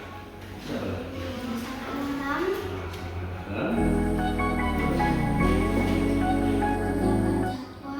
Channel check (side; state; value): both; identical; correlation 1.00